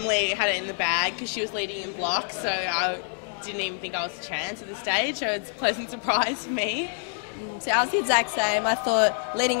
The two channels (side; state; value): right; silent; 57 dB below the other